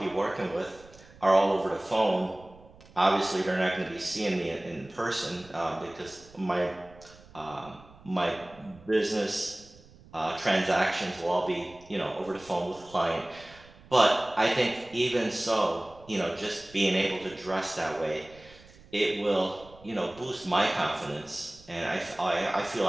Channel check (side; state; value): right; noise; rumble, 23 dB below the sound